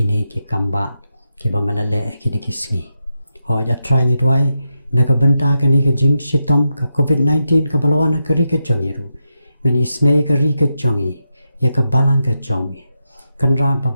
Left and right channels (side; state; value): both; inverted; correlation -0.87